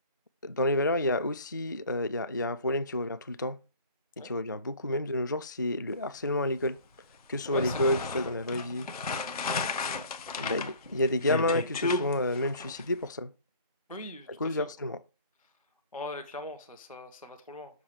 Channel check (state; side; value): inverted; both; correlation -0.48